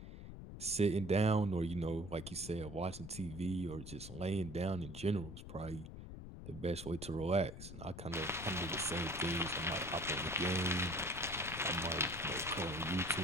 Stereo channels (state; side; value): noise; left; rumble, 11 dB below the sound